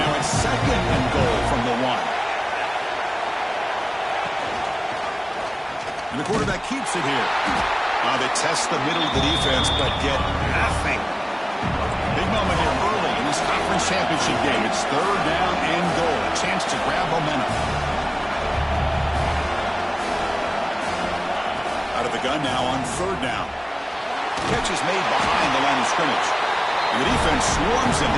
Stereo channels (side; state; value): both; identical; correlation 1.00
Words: it's 2nd and goal from the 1. And the quarterback keeps it here. They test the middle of the defense, but get nothing. Big moment here early in this conference championship game. It's 3rd down and goal. A chance to grab momentum. Out of the gun now on 3rd down. Catch is made behind the line of scrimmage. And the defense swarms him.